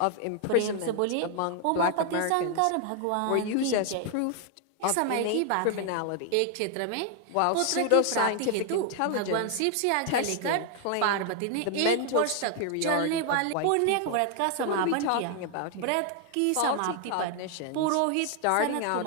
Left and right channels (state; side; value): different; both; correlation 0.00